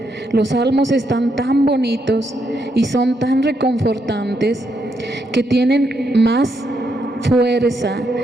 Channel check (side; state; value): both; normal; correlation 0.78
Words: Los salmos están tan bonitos y son tan reconfortantes que tienen más fuerza